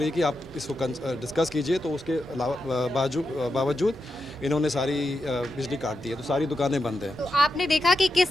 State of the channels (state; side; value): normal; both; correlation 0.87